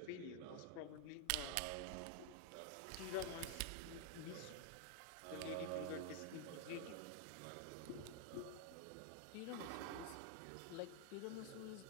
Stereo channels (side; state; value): both; different; correlation 0.00